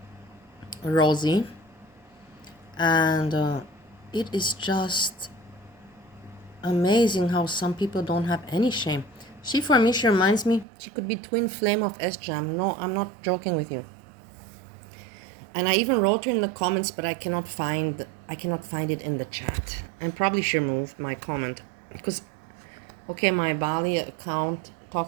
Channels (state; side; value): drops out; left; at 10.7 s